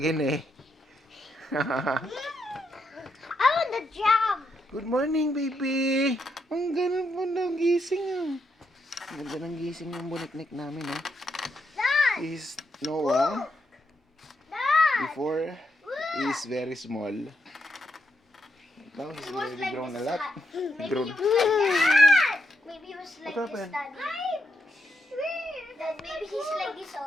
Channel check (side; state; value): both; normal; correlation 0.81